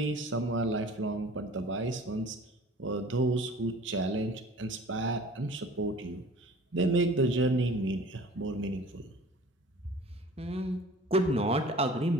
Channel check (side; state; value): both; normal; correlation 0.46